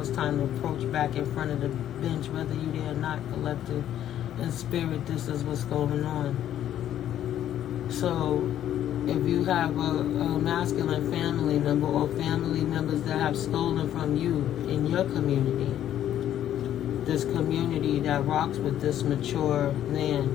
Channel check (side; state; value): right; quieter; 11.3 dB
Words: time to approach back in front of the bench, whether you there or not, collective and spirit. This is what's going on. So if you have a masculine family member or family members that have stolen from you in your community, this community that rocks with this mature